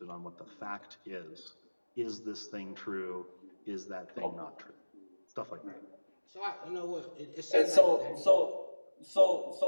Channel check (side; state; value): both; inverted; correlation -1.00